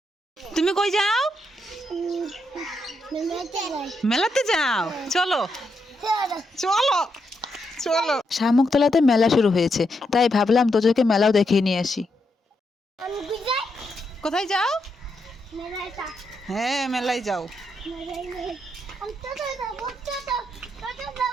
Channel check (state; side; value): normal; both; correlation 0.81